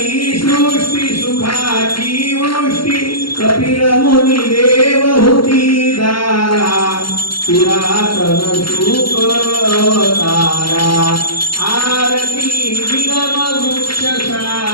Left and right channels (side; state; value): right; late; 0.73 ms